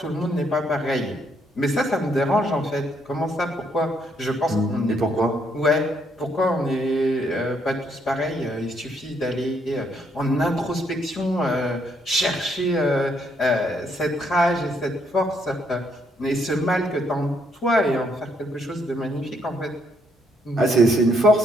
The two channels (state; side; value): normal; both; correlation 0.72